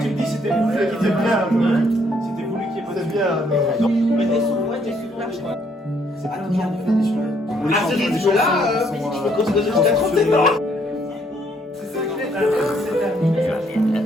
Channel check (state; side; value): normal; both; correlation 0.68